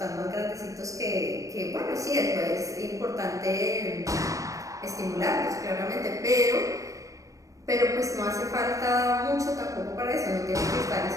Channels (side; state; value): left; late; 0.16 ms